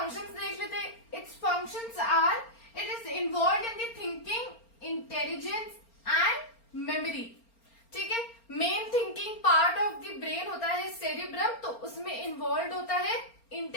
देख लेते हैं। Its functions are, it is involve in the thinking, intelligence and memory. ठीक है, main thinking part of the brain होता है सेरिब्रम, तो उसमें इन्वॉल्व होता है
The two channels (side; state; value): right; late; 4.4 ms